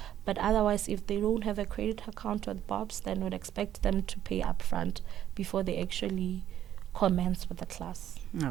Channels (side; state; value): left; quieter; 11.1 dB